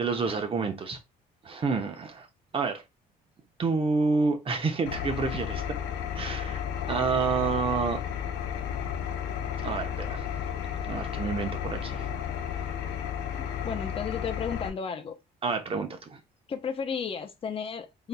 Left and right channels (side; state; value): both; normal; correlation 0.47